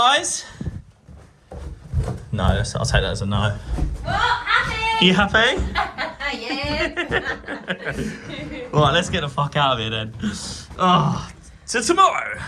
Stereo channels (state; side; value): identical; both; correlation 1.00